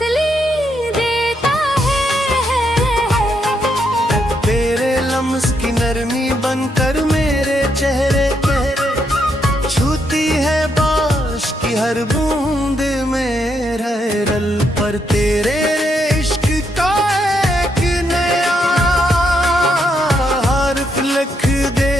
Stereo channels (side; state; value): both; normal; correlation 0.78